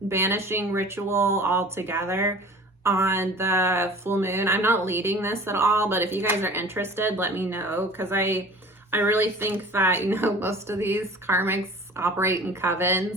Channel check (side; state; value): both; normal; correlation 0.44